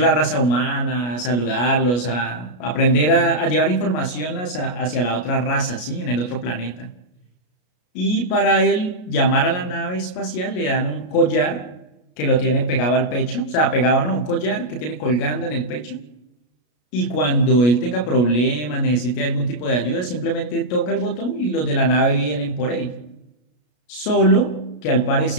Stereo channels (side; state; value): right; late; 33 ms